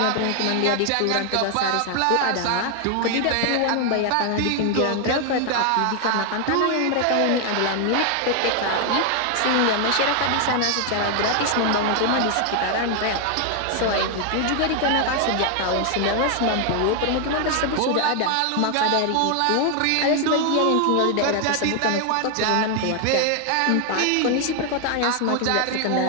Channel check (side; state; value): both; different; correlation 0.00